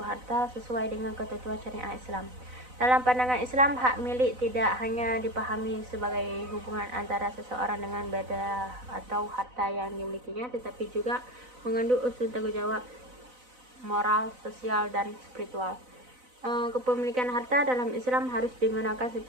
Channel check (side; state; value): left; late; 4.0 ms